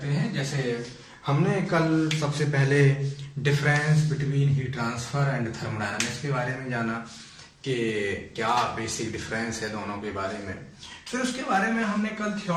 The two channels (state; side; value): identical; both; correlation 1.00